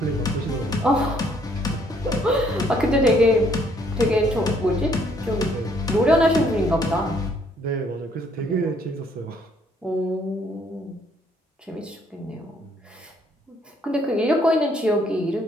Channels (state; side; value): normal; both; correlation 0.66